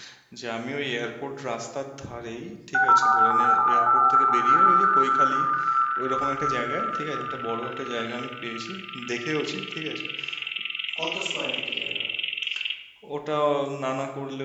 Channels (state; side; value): identical; both; correlation 1.00